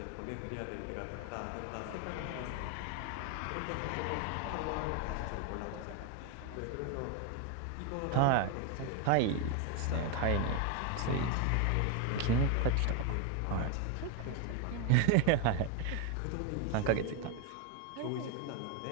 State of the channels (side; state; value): both; different; correlation 0.01